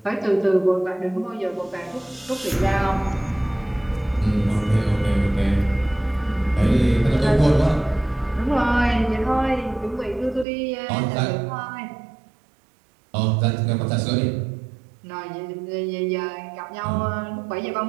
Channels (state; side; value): drops out; left; at 10.5 s